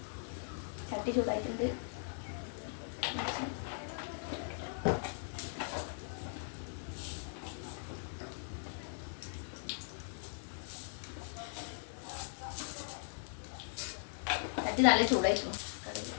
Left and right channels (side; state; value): right; silent; digital silence